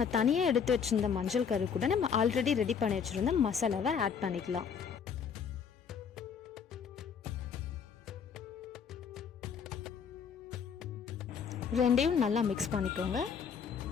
தனியாக எடுத்து வச்சுருந்த மஞ்சள் கரு கூட நம்ம ஆல்ரெடி ரெடி பண்ணி வச்சுருந்த மசாலாவை ஆட் பண்ணிக்கலாம். ரெண்டையும் நல்லா மிக்ஸ் பண்ணிக்கோங்க.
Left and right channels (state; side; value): quieter; right; 6.8 dB